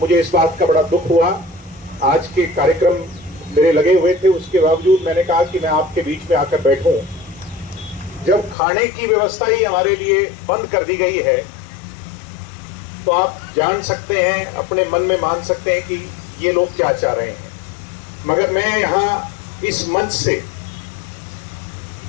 इस बात का बड़ा दुख हुआ। आज के कार्यक्रम मेरे लगे हुए थे, उसके बावजूद मैंने कहा कि मैं आपके बीच में आकर बैठूं। जब खाने की व्यवस्था ही हमारे लिए बंद कर दी गई है तो आप जान सकते हैं, अपने मन में मान सकते हैं कि ये लोग क्या चाह रहे हैं। मगर मैं यहां इस मंच से,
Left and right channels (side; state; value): right; drops out; at 8.6 s